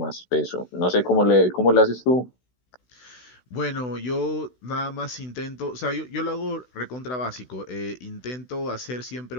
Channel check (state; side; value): late; right; 16 ms